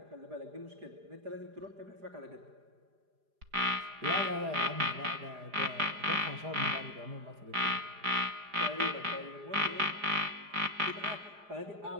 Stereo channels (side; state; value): left; late; 4.9 ms